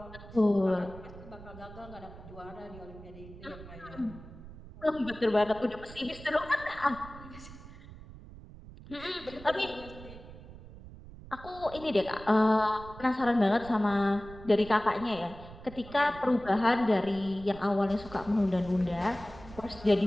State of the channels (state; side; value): noise; right; rumble, 16 dB below the sound